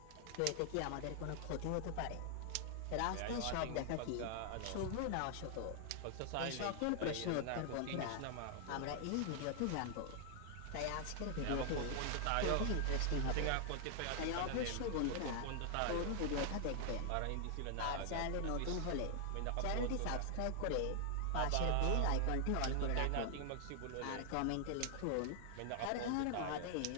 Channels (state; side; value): different; both; correlation 0.00